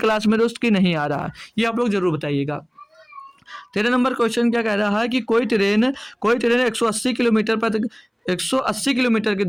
में दोस्त की नहीं आ रहा है, ये आप लोग जरूर बताइएगा। 13 नंबर क्वेश्चन क्या कह रहा है कि कोई ट्रेन 180 किलोमीटर पर 180 किलोमीटर की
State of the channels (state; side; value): identical; both; correlation 1.00